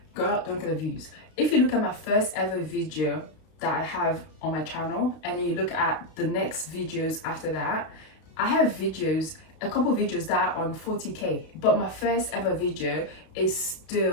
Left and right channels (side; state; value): right; late; 32 ms